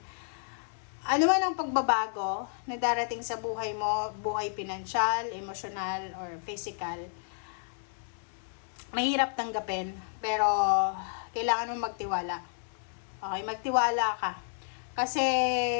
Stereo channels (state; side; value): silent; right; digital silence